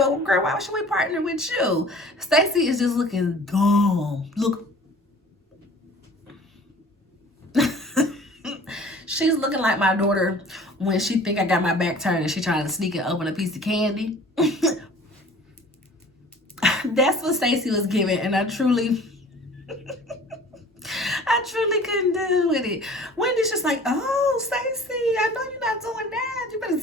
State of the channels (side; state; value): both; normal; correlation 0.47